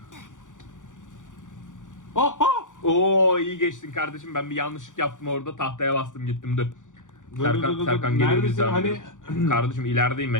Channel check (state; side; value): late; right; 0.87 ms